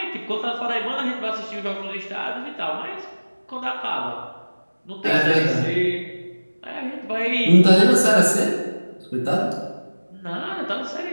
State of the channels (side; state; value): both; inverted; correlation -1.00